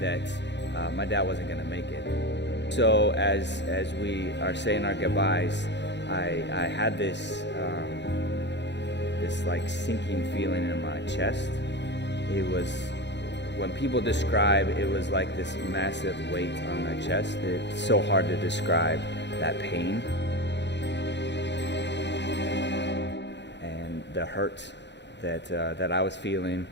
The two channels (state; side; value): late; right; 0.51 ms